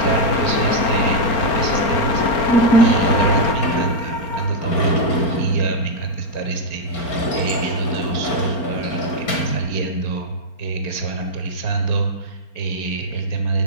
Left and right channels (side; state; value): right; late; 4.4 ms